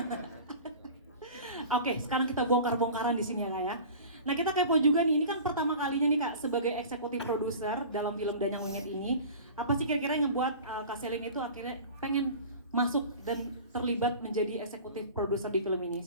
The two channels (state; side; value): inverted; both; correlation -0.39